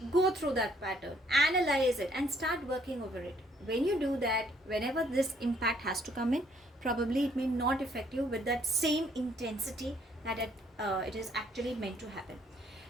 Go through that pattern, analyze it, and start working over it. When you do that, whenever this impact has to come in, probably it may not affect you with that same intensity that it is actually meant to happen.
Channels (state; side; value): normal; both; correlation 0.65